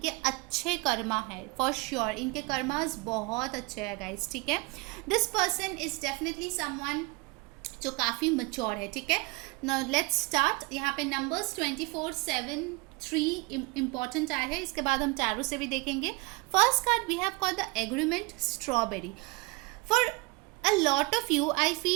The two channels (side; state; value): left; quieter; 26.0 dB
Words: अच्छे कर्मा है फॉर श्योर, इनके कर्मास बहुत अच्छे हैं गाइस, ठीक है। This person is definitely someone जो काफ़ी मच्योर है, ठीक है। Now let's start. यहाँ पे नंबर्स 24, 7, 3 इंपॉर्टेंट आए हैं, इसके बाद हम टैरो से भी देखेंगे। First card we have called the agreement strawberry. For a lot of you I